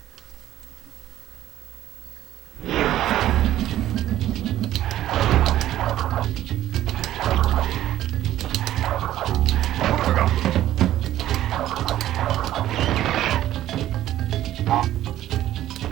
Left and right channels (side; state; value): left; quieter; 13.2 dB